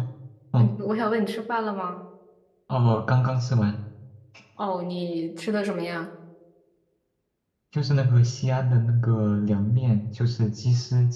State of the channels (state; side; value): identical; both; correlation 1.00